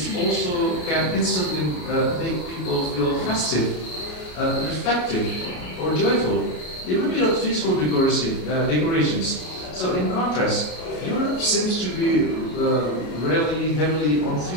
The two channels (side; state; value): right; late; 33 ms